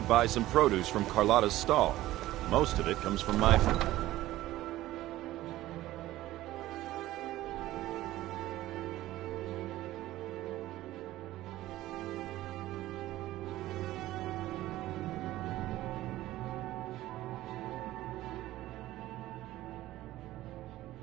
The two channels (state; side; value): quieter; left; 15.7 dB